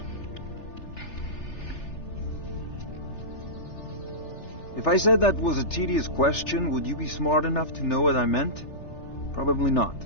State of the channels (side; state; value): right; late; 3.4 ms